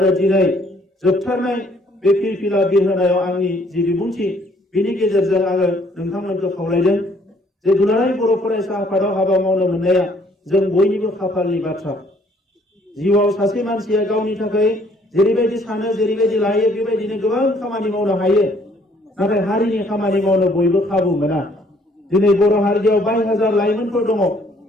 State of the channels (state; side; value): normal; both; correlation 0.63